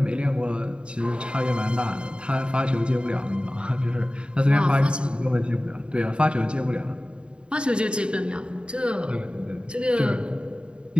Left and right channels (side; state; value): left; late; 0.053 ms